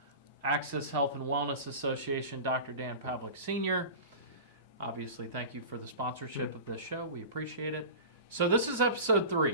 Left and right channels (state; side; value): inverted; both; correlation -0.32